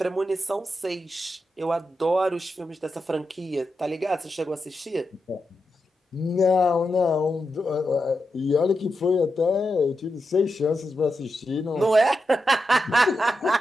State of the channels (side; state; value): both; normal; correlation 0.87